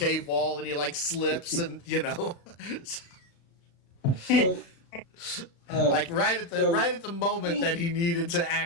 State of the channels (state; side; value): late; right; 35 ms